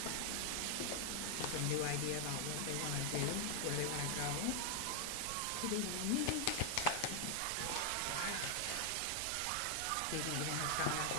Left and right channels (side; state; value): both; different; correlation 0.00